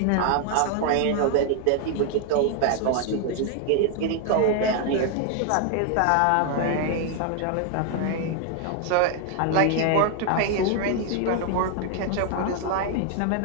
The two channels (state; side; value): different; both; correlation 0.00